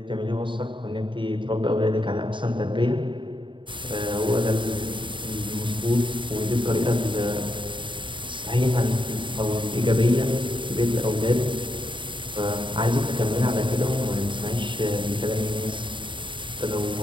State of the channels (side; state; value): left; late; 0.24 ms